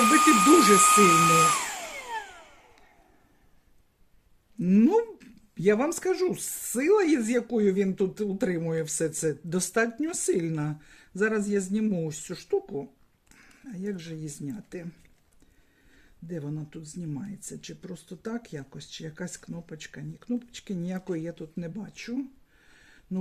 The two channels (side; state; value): both; identical; correlation 1.00